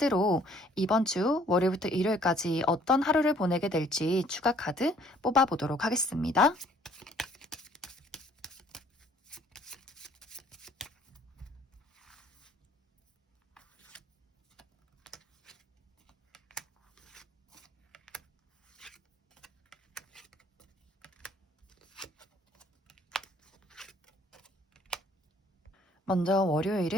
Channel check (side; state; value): both; normal; correlation 0.60